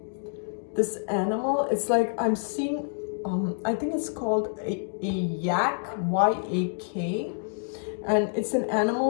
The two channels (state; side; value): silent; right; digital silence